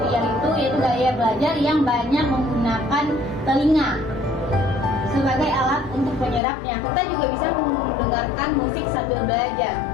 itu yaitu gaya belajar yang banyak menggunakan telinga sebagai alat untuk penyerapnya. Kita juga bisa mendengarkan musik sambil belajar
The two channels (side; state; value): right; drops out; at 6.4 s